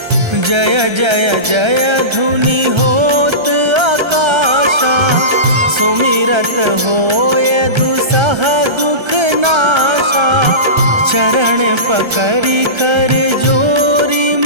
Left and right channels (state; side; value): late; left; 1.3 ms